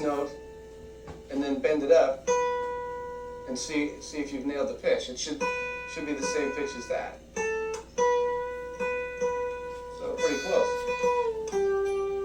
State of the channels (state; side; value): identical; both; correlation 1.00